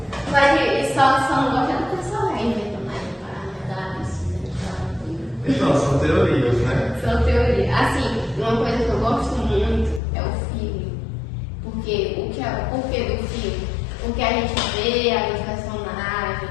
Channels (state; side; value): drops out; right; at 10.0 s